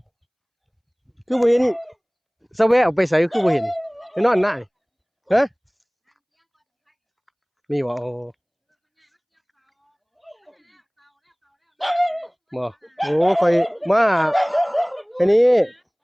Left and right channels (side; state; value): both; identical; correlation 1.00